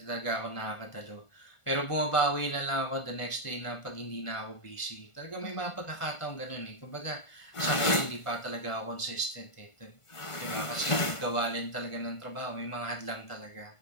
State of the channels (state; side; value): late; right; 1.5 ms